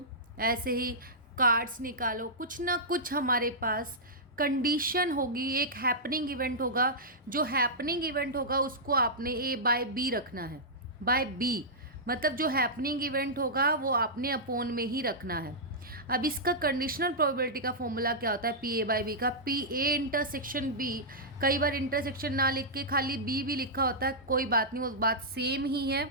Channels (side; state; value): both; normal; correlation -0.12